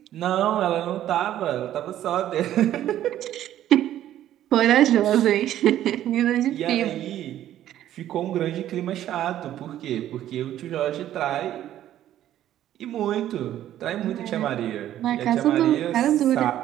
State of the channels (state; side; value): quieter; left; 12.2 dB